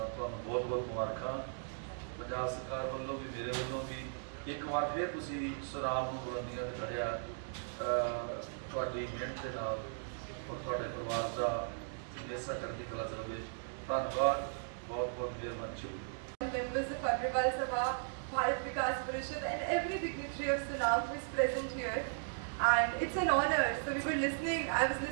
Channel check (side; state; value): left; silent; digital silence